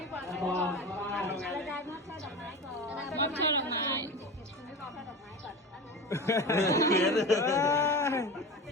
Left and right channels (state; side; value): normal; both; correlation 0.29